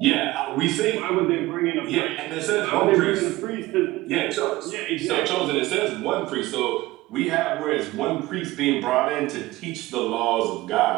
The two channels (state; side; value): quieter; left; 18.8 dB